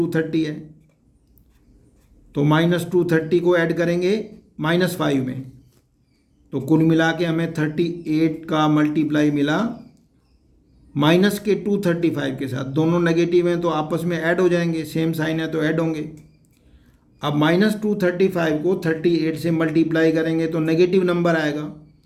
है, तो -230 को ऐड करेंगे -5 में, तो कुल मिला के हमें 38 का मल्टीप्लाई मिला माइनस के 235 के साथ। दोनों नेगेटिव हैं तो आपस में ऐड हो जाएंगे, सेम साइन है तो ऐड होंगे। अब -235 को 38 से मल्टीप्लाई करेंगे तो नेगेटिव नंबर आएगा,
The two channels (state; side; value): identical; both; correlation 1.00